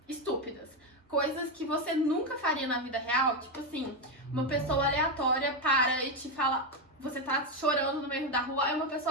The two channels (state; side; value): normal; both; correlation 0.08